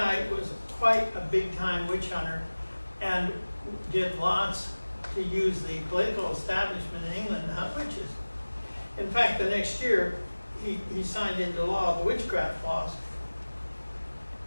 was quite a big-time witch hunter and did lots to use the political establishment in England to hunt witches. In fact, the next year, he signed into law the witchcraft laws,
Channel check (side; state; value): both; inverted; correlation -1.00